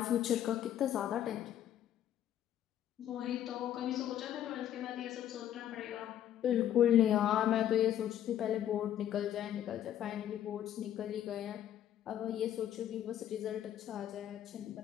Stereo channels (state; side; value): quieter; right; 11.1 dB